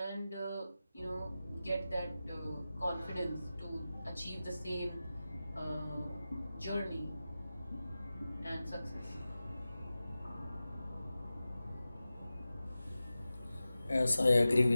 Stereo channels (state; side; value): inverted; both; correlation -0.95